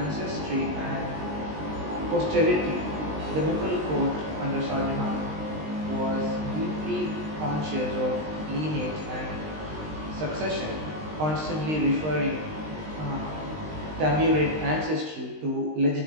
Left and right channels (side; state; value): left; late; 19 ms